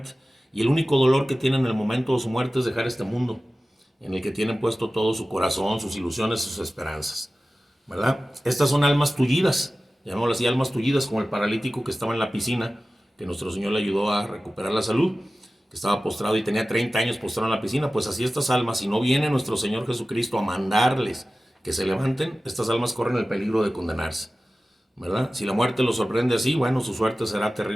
Y el único dolor que tienen en el momento de su muerte es dejar este mundo, en el que tienen puesto todo su corazón, sus ilusiones, sus esperanzas, ¿verdad? Estas son almas tullidas, llamémoslo así, almas tullidas, como el paralítico que estaba en la piscina, que nuestro Señor le ayudó a recuperar la salud, que estaba postrado y tenía 30 años postrado en la piscina. Pues así estas almas, si no viene nuestro Señor Jesucristo a mandarles que se levanten, estas almas corren el peligro de condenarse, ¿verdad? Si la muerte los sorprende así, bueno, su suerte será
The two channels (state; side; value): normal; both; correlation 0.96